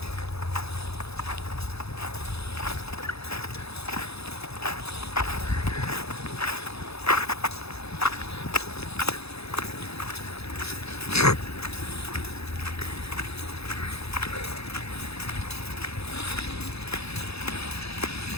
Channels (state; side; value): late; right; 0.79 ms